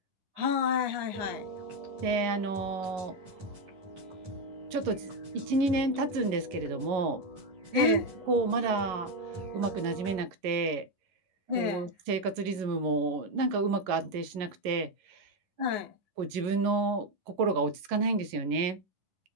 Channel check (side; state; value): left; late; 11 ms